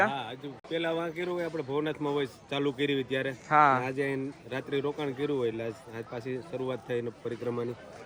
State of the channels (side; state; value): both; identical; correlation 1.00